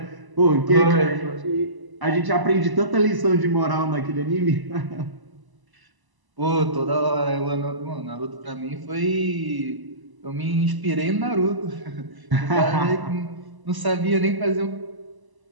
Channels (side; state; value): left; late; 1.0 ms